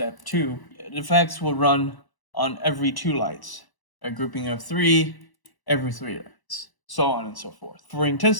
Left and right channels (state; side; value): late; right; 1.0 ms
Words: 2, the effects will run on every 2 lights. A grouping of 3, every 3 lights, so on and so forth. For